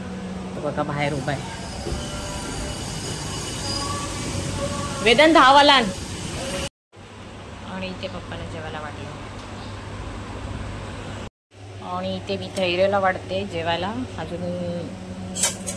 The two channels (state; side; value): identical; both; correlation 1.00